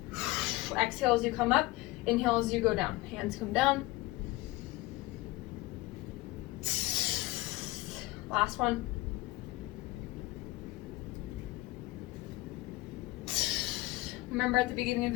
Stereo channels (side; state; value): right; quieter; 19.6 dB